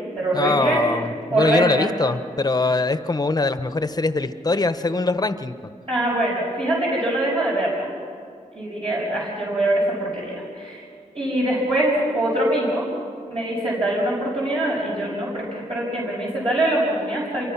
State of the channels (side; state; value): both; normal; correlation 0.65